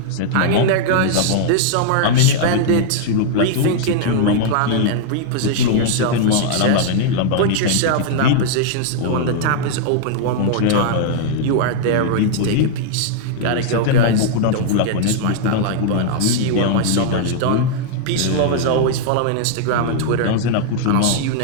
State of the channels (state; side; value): different; both; correlation -0.01